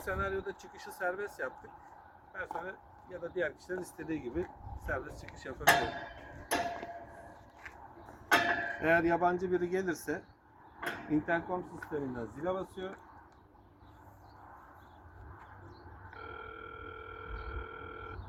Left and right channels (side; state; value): both; identical; correlation 1.00